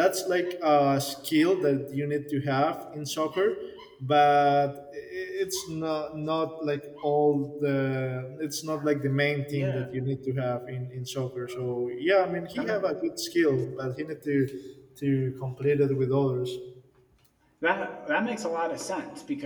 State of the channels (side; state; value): both; identical; correlation 1.00